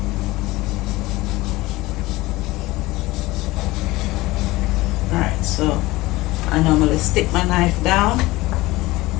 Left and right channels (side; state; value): right; quieter; 19.7 dB